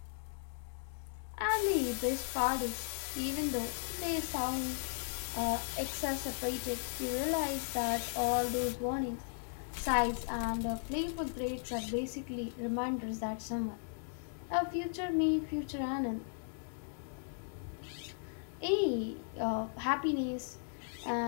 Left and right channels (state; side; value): silent; right; digital silence